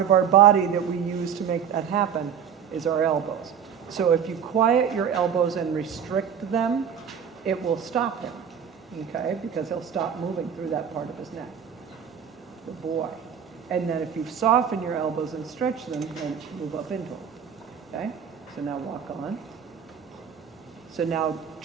of our body that we use to make that happen is our elbows. So if you quiet your elbows and restrict them, it will stop him, okay? Because he'll stop moving through that part of his neck, the boy. And then if you soften your elbows and stretch them, then move up into them, okay? So now walk on. So now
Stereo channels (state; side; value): quieter; left; 7.9 dB